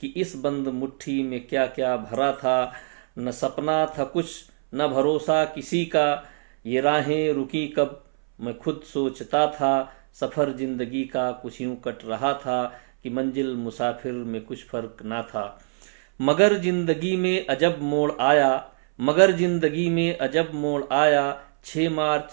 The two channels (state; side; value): silent; left; 62 dB below the other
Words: इस बंद मुट्ठी में क्या क्या भरा था। न सपना था कुछ न भरोसा किसी का। ये राहें रुकी कब मैं खुद सोचता था। सफ़र जिंदगी का कुछ यूं कट रहा था कि मंजिल मुसाफिर में कुछ फ़र्क ना था। मगर जिंदगी में अजब मोड़ आया। मगर जिंदगी में अजब मोड़ आया। 6